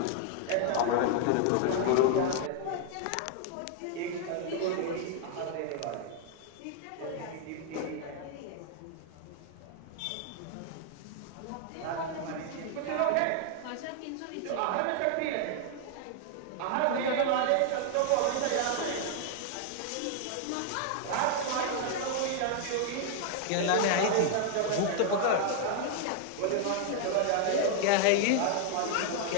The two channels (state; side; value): different; both; correlation 0.00